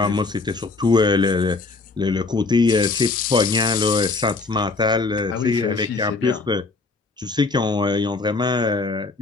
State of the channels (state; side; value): quieter; right; 3.8 dB